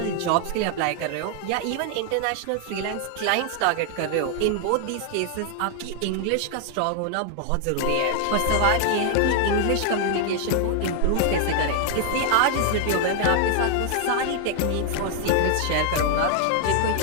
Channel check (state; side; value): different; both; correlation 0.00